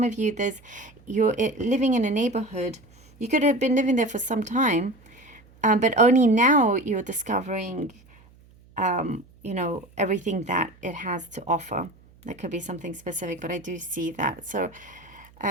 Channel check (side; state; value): right; noise; hum, 27 dB below the sound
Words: of you, you're living in a neighborhood. You could have been living there for some time, but only now you're discovering, everything that it has to offer. That could be something specific, but I do see that. So